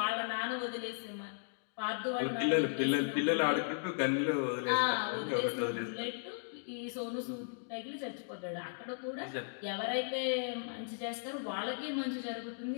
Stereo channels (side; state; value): right; silent; digital silence